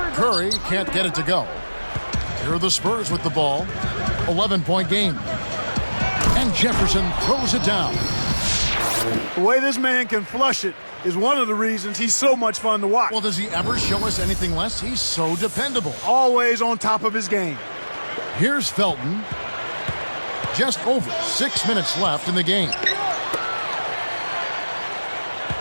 Curry can't get it to go. Here are the Spurs with the ball. 11-point game. And Jefferson throws it down. The way this man can flush it is one of the reasons he's so much fun to watch. Well, does he ever show us anything less? He's so dependable. Always on top of his game. Here's Felton. Just over 6 minutes left in the game.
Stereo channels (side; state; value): both; inverted; correlation -1.00